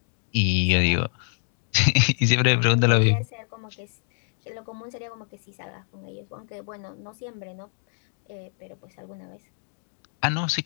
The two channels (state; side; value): silent; right; digital silence